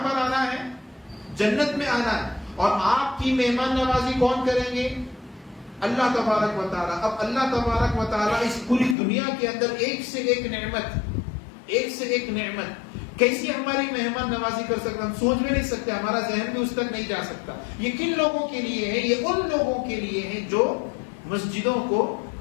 پر آنا ہے؟ جنت میں آنا ہے. اور آپ کی مہمان نوازی کون کریں گے؟ اللہ تبارک و تعالی. اب اللہ تبارک و تعالی اس پوری دنیا کے اندر ایک سے ایک نعمت، ایک سے ایک نعمت، کیسی ہماری مہمان نوازی کر سکتا، ہم سوچ بھی نہیں سکتے، ہمارا ذہن بھی اس تک نہیں جا سکتا. یہ کن لوگوں کے لیے ہے؟ یہ ان لوگوں کے لیے ہے جو مسجدوں کو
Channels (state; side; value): drops out; right; at 9.0 s